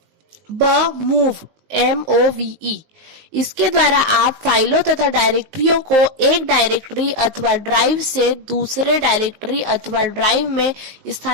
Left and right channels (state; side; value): late; left; 19 ms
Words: मूव MOVE इसके द्वारा आप फाइलों तथा डायरेक्टरियों को एक डायरेक्टरी अथवा ड्राइव से दूसरे डायरेक्टरी अथवा ड्राइव में